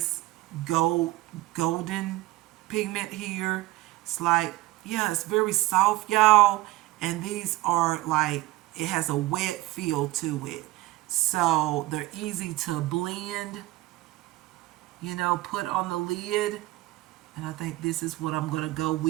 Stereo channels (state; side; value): quieter; left; 18.5 dB